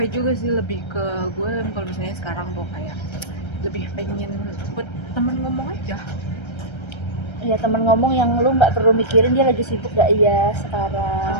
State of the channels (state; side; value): late; right; 1.3 ms